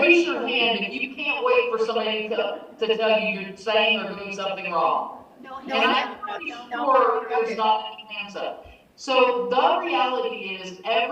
your hand if you can't wait for somebody to tell you you're saying or doing something wrong. And I'm pretty sure there's not any hands up. So the reality is,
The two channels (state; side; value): identical; both; correlation 1.00